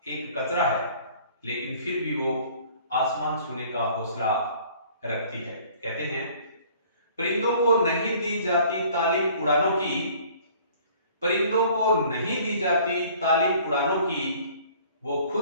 एक कचरा है, लेकिन फिर भी वो आसमान छूने का हौसला रखती है। कहते हैं, परिंदों को नहीं दी जाती तालीम उड़ानों की, परिंदों को नहीं दी जाती तालीम उड़ानों की, वो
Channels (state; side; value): inverted; both; correlation -0.53